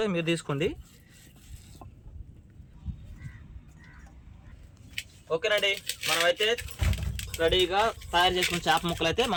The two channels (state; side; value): identical; both; correlation 1.00